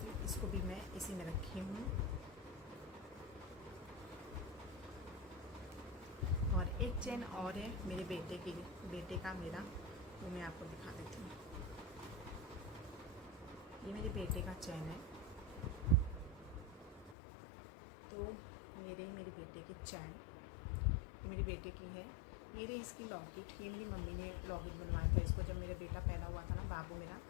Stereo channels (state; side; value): drops out; right; at 17.2 s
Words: इसको भी मैं इसी में रखी हूँ। और एक चैन और है मेरे बेटे का मेरा, वो मैं आपको दिखा देती हूँ। ये मेरे बेटे का चैन है। तो ये रही मेरे बेटे की चैन, ये मेरे बेटे की है। ये रही इसकी लॉकेट, ये मेरी मम्मी ने लॉकेट बनवाया था इसको, जब मेरा बेटा पैदा हुआ था ना, बाबू मेरा,